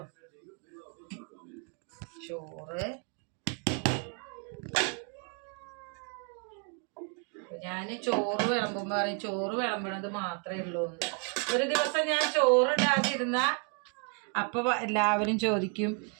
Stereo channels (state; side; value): quieter; left; 39.3 dB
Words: ചോറ്, ഞാൻ ചോറ് വിളമ്പുമ്പോൾ പറയും ചോറ് വിളമ്പണത് മാത്രമേ ഉള്ളൂ. ഒരു ദിവസം ഞാൻ ചോറ് ഇടാതിരുന്ന അപ്പൊ എല്ലാവരും ചോദിക്കും